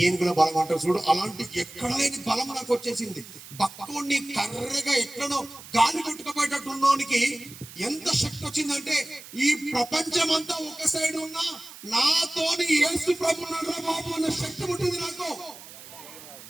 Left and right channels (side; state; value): right; noise; hiss, 16 dB below the sound